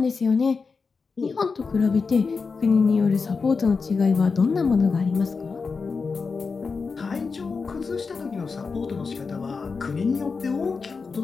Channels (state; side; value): quieter; right; 4.8 dB